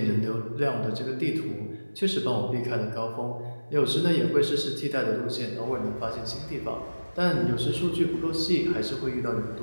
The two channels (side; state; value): both; inverted; correlation -1.00